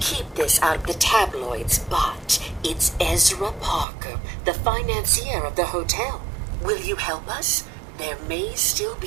this out of the tabloids, but it's Ezra Parker, the financier of the hotel. Will you help us? There may still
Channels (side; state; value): left; drops out; at 3.9 s